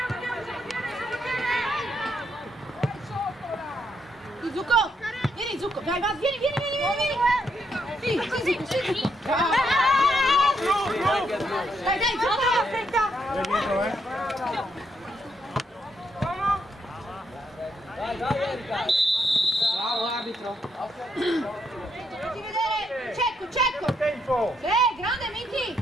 Tu, Zucco! Vieni, Zucco! Vai, vai, vieni! Sì, Zucco, sì! Dai, Zucco! Aspetta! Vai dietro, Bravo arbitro. Facci vedere! Cecco! Tempo! Grande Miki!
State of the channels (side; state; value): both; normal; correlation 0.77